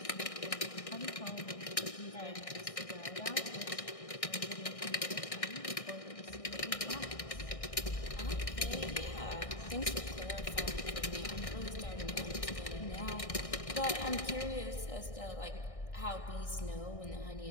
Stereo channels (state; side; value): late; right; 1.6 ms